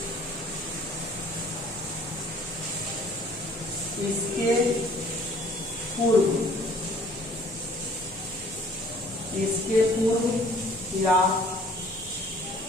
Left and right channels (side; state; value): both; normal; correlation 0.55